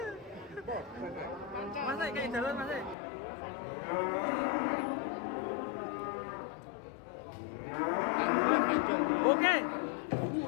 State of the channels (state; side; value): drops out; right; at 3.0 s